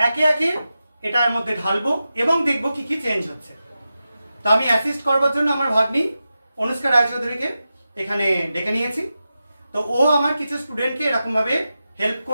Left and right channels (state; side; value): inverted; both; correlation -0.92